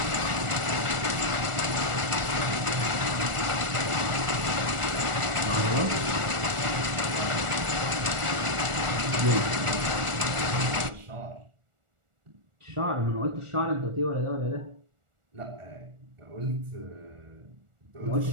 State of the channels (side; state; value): left; late; 1.4 ms